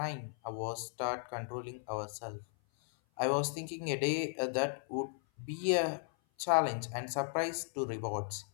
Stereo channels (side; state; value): right; silent; 54 dB below the other